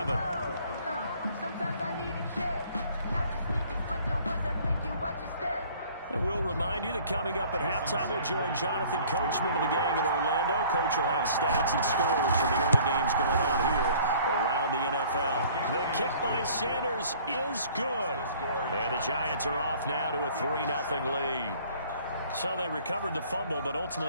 And we'll remind you that coming up at halftime, we'll join Jonathan Coachman of the gang in Orlando. Coach will have stats and scores from the early games going on here around the NFL. The kick by Sanders is good. And the Giants are off now to a 3-0 lead. So they recovered the fumble, but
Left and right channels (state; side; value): inverted; both; correlation -0.53